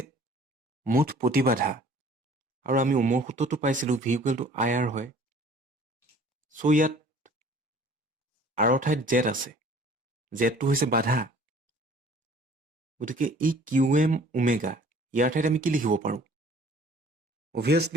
মুঠ প্ৰতিবাধা আৰু আমি ওমৰ সূত্ৰটো পাইছিলো V equal to IR হয় সো ইয়াত R ঠাইত Z আছে Z টো হৈছে বাধা গতিকে এই QM omega ইয়াৰ ঠাইত আমি কি লিখিব পাৰো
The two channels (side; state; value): both; normal; correlation 0.52